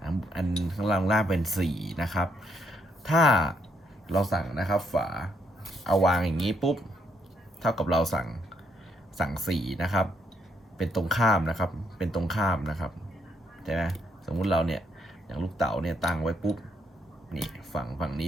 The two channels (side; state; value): both; normal; correlation 0.73